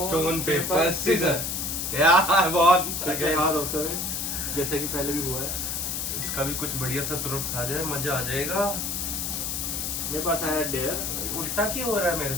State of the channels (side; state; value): left; noise; hiss, 2 dB below the sound